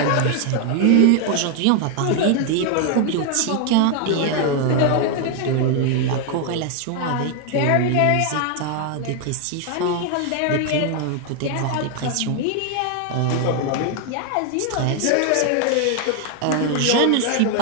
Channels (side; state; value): both; different; correlation 0.01